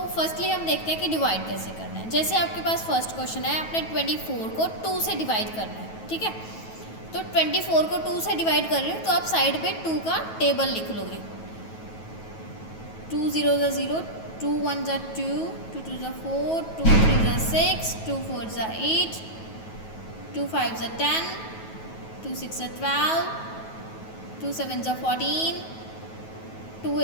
फर्स्टली हम देखते हैं कि डिवाइड कैसे करना है। जैसे आपके पास फर्स्ट क्वेश्चन है, आपने 24 को 2 से डिवाइड करना है, ठीक है। तो 24 को 2 से डिवाइड कर रहे हो तो आप साइड पे 2 का टेबल लिख लोगे। 2 0 ज़ा 0, 2 1 ज़ा 2, 2 2 ज़ा 4, 2 3 ज़ा 6, 2 4 ज़ा 8, 2 5 ज़ा 10, 2 6 ज़ा 12, 2 7 ज़ा 14, 2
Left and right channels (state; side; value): late; right; 9.2 ms